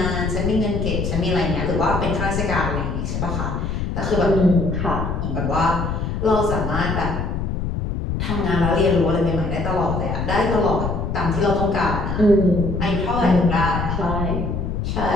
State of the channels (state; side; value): noise; left; rumble, 2 dB below the sound